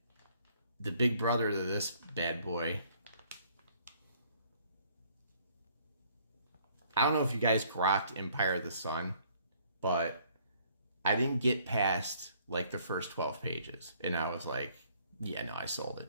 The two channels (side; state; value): both; inverted; correlation -0.62